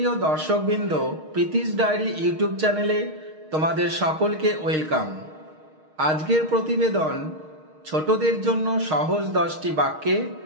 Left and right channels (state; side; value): late; left; 6.4 ms